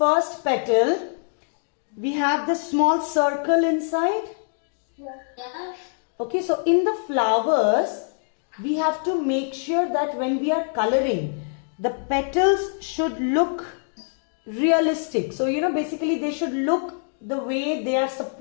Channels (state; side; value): silent; right; digital silence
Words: petal, we have this small circle inside. Okay, so in the flowers, we have to make sure that when we are coloring, the petals should look realistic. So, basically they should look the way they are